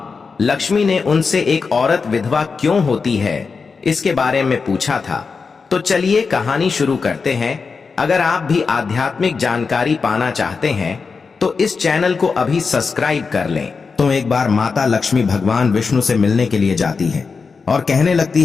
लक्ष्मी ने उनसे एक औरत विधवा क्यों होती है इसके बारे में पूछा था। तो चलिए कहानी शुरू करते हैं। अगर आप भी आध्यात्मिक जानकारी पाना चाहते हैं तो इस चैनल को अभी सब्सक्राइब कर लें। तो एक बार माता लक्ष्मी भगवान विष्णु से मिलने के लिए जाती है और कहने लगती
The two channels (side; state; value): right; quieter; 4.9 dB